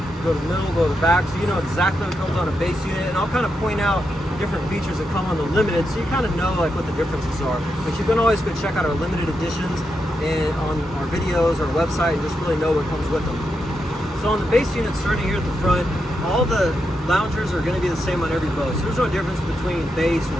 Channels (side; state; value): both; normal; correlation 0.84